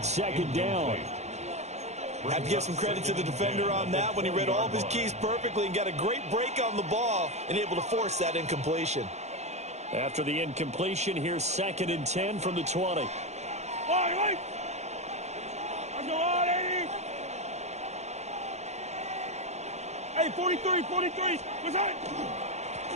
2nd down. I have to give some credit to the defender on that when he read all of his keys perfectly and got a great break on the ball and able to force that incompletion. After the incompletion, here's 2nd and 10 from the 20. Wait. Let's go on, 80. Hey, 43. What's that?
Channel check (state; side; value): late; left; 0.33 ms